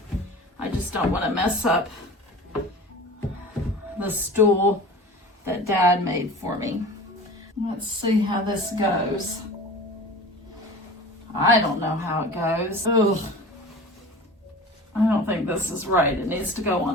I just don't want to mess up the stool that Dad made for me. Let's see how this goes. I don't know how it goes. Ugh. I don't think this is right. It needs to go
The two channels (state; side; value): normal; both; correlation 0.38